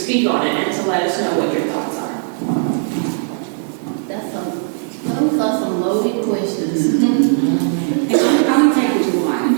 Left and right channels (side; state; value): left; silent; digital silence